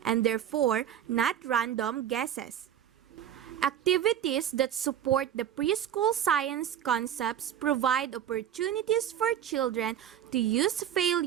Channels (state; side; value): quieter; left; 10.1 dB